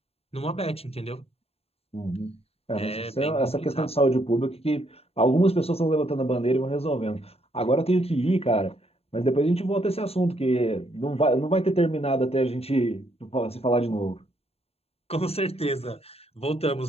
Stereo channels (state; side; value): late; right; 0.29 ms